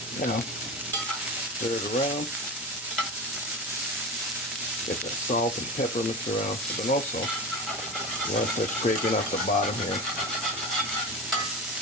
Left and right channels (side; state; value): both; normal; correlation 0.26